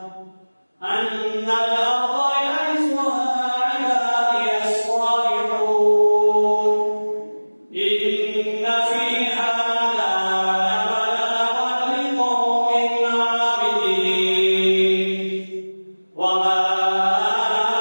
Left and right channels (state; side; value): inverted; both; correlation -1.00